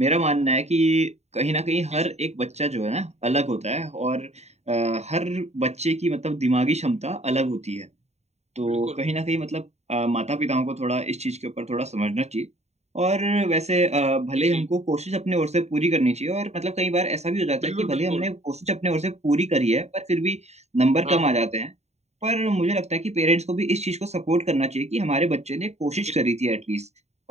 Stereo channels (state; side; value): late; left; 0.32 ms